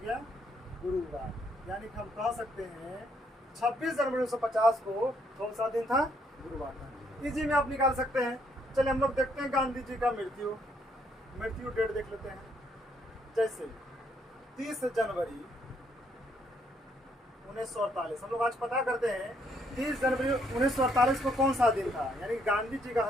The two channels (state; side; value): normal; both; correlation 0.71